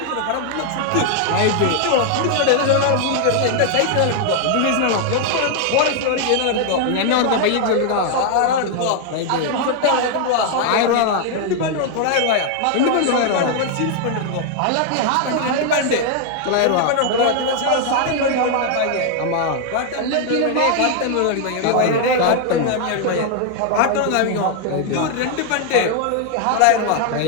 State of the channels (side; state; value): both; different; correlation 0.00